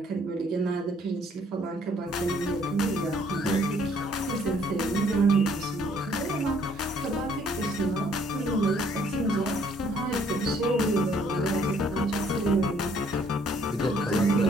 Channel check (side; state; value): both; normal; correlation 0.63